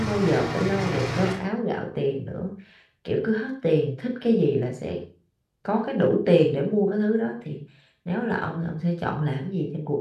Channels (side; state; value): both; identical; correlation 1.00